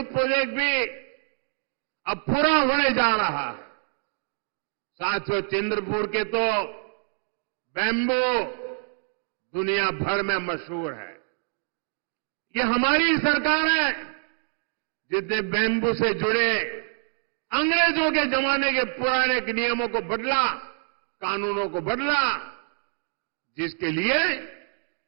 प्रोजेक्ट भी अब पूरा होने जा रहा है। साथियों, चंद्रपुर के तो बैम्बू दुनिया भर में मशहूर है। ये हमारी सरकार है जिसने बैम्बू से जुड़े अंग्रेजों के जमाने के पुराने नियमों को बदला, कानूनों को बदला, जिसके लिए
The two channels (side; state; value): left; silent; 60 dB below the other